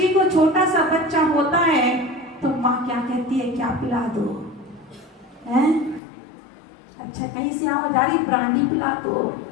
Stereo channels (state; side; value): drops out; right; at 6.0 s